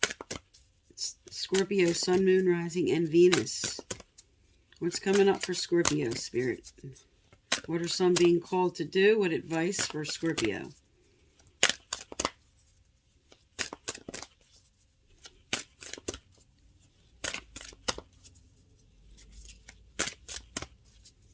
Scorpio, Sun, Moon, Rising, and Venus. What's coming up for Scorpio, Spirit? What are some being called to do? What advice for Scorpio?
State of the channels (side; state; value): both; identical; correlation 1.00